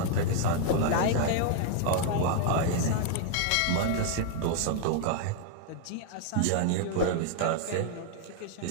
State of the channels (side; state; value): both; different; correlation 0.00